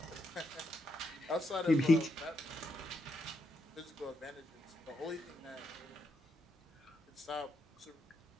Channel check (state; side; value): normal; both; correlation 0.80